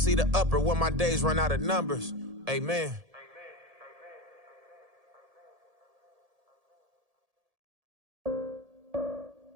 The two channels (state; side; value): late; left; 1.7 ms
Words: the upper when my days run out of numbers. Amen.